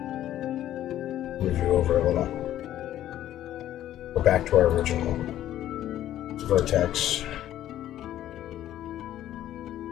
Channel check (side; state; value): right; quieter; 12.5 dB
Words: Move you over a little. Go back to our original vertex.